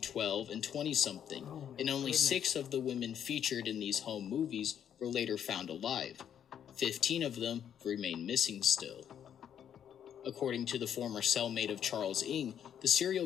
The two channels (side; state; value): right; quieter; 9.2 dB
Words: and 20-something, and only 6 of the women featured in these home movies were later found alive. 15 of them remain missing still. According to the former cellmate of Charles Ng, the